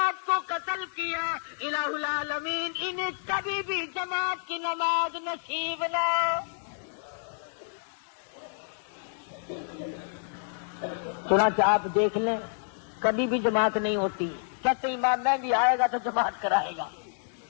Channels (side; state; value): right; silent; digital silence